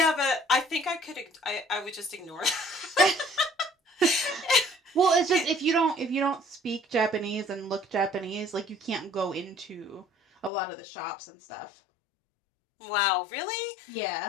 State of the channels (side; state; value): right; drops out; at 10.5 s